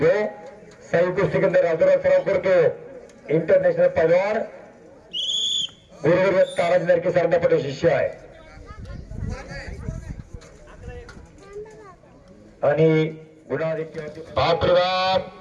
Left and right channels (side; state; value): both; identical; correlation 1.00